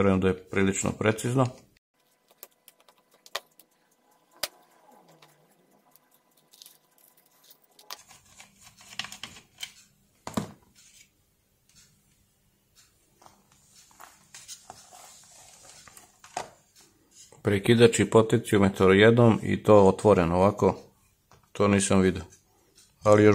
da je prilično precizno. Prekidač i potenciometar jednom i to otvoreno ovako, to nisam vidio, ali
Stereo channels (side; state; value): both; identical; correlation 1.00